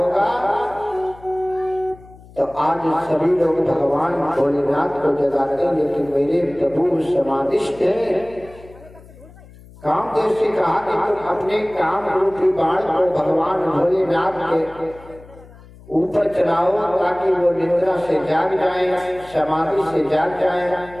तो आज सभी लोग भगवान भोलेनाथ को जगाते हैं, लेकिन मेरे प्रभु समाधिष्ठ हैं। कामदेव से कहा कि तुम अपने काम रूपी बाण को भगवान भोलेनाथ के ऊपर चलाओ ताकि वो निद्रा से जाग जाए, समाधि से जाग जाए।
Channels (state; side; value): noise; left; hum, 22 dB below the sound